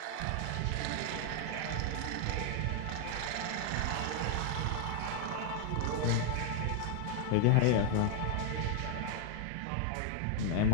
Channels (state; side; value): different; both; correlation 0.00